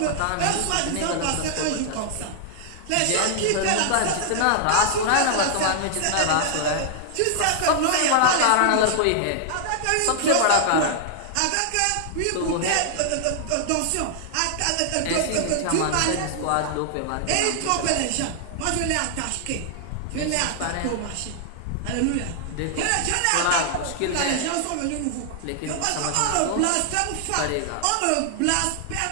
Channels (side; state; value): both; different; correlation -0.01